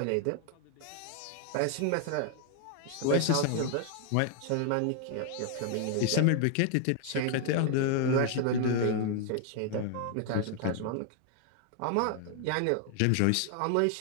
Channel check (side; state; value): both; different; correlation 0.00